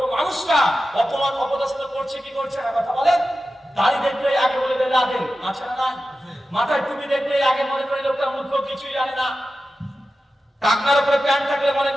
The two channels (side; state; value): both; normal; correlation 0.93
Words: মানুষরা অপমান অপদস্থ করছে কি করছে না? কথা বলেন। দাড়ি দেখলে আগে বলে দেয় লাদেন, আছে না নাই? মাথায় টুপি দেখলে আগে মনে করে লোকটা মূর্খ, কিছুই জানে না। টাকনার উপরে প্যান্ট থাকলে মনে